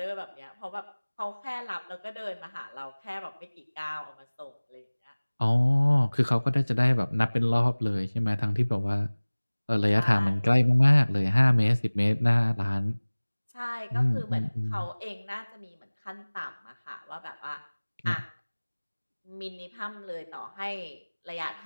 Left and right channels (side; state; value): both; inverted; correlation -1.00